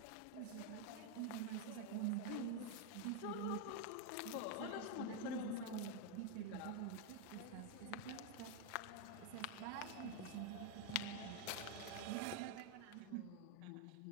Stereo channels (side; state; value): both; different; correlation 0.01